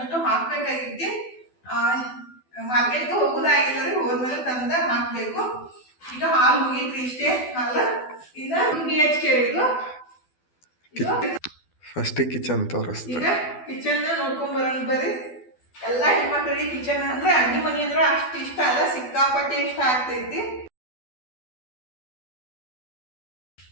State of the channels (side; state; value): right; late; 12 ms